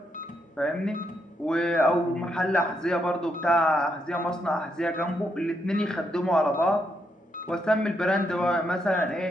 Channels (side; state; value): both; normal; correlation 0.78